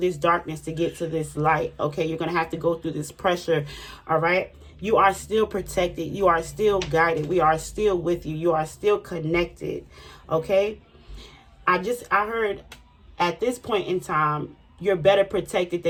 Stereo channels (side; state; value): both; identical; correlation 1.00